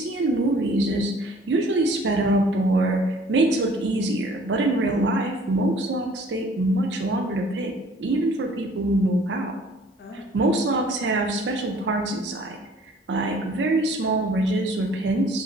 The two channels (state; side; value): normal; both; correlation 0.54